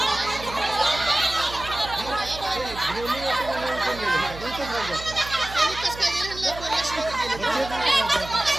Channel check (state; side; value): noise; right; hum, 13 dB below the sound